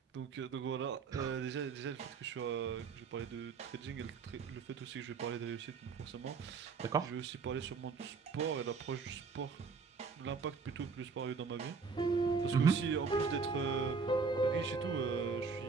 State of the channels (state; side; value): quieter; left; 5.1 dB